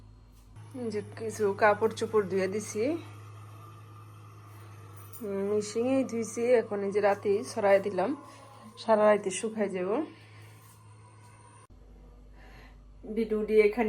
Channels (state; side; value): identical; both; correlation 1.00